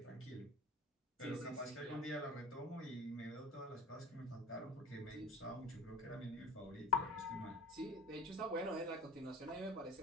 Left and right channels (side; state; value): both; normal; correlation 0.37